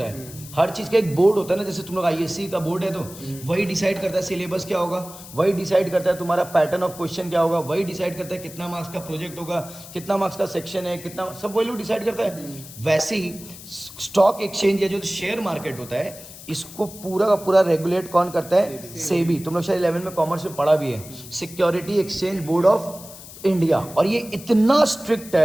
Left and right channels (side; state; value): left; noise; hiss, 16 dB below the sound